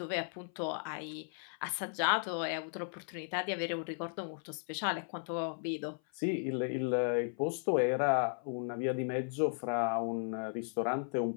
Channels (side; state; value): right; silent; 54 dB below the other